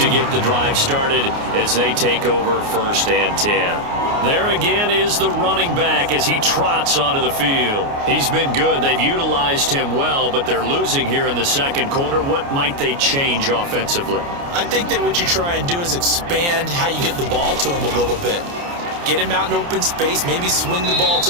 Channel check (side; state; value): left; late; 29 ms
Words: get the drive started as they take over 1st and 10. There again is the running back as he trots onto the field. He's been good. They've utilized him well, but they're losing here in the 2nd quarter. What might they change offensively? I think that what you try and do is expand how you get the ball to him a little bit. Get him out in open space, maybe swing the ball